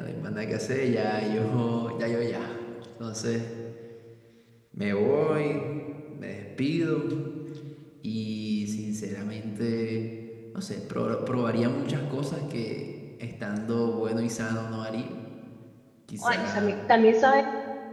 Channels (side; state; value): both; identical; correlation 1.00